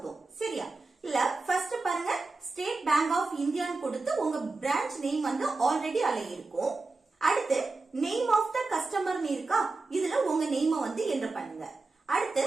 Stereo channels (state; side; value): quieter; left; 3.6 dB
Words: சரியா? இல்ல ஃபர்ஸ்ட் பாருங்க, ஸ்டேட் பேங்க் ஆஃப் இந்தியான்னு கொடுத்து உங்க பிரான்ச் நேம் வந்து ஆல்ரெடி அதுல இருக்கும். அடுத்து நேம் ஆஃப் த கஸ்டமர்னு இருக்கா, இதுல உங்க நேம் வந்து என்டர் பண்ணுங்க. அடுத்து